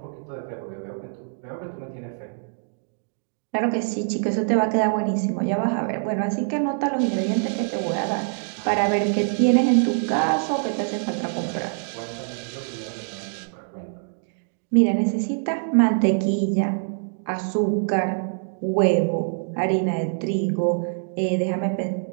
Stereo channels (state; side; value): silent; left; digital silence